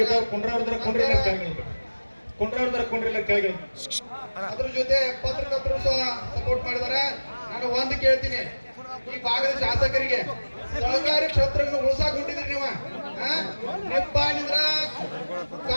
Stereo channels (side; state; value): both; inverted; correlation -1.00